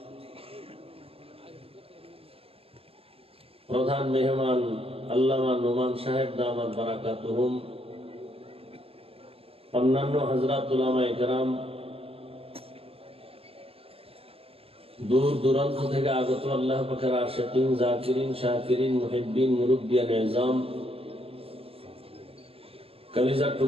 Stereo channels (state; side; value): late; left; 0.28 ms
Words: প্রধান মেহমান আল্লামা নোমান সাহেব দামাত বারাকাতুহুম অন্যান্য হযরত উলামায়ে কেরাম दूर दूरांत থেকে আগত আল্লাহ পাকের আশিকিন জাকিরিন শাকিরিন মুহিব্বিন মুরব্বিয়ান ইজাম কলিজার